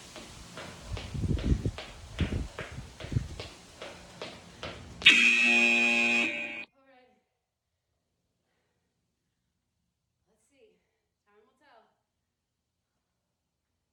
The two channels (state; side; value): identical; both; correlation 1.00